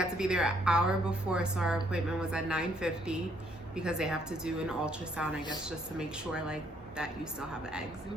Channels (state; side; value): normal; both; correlation 0.68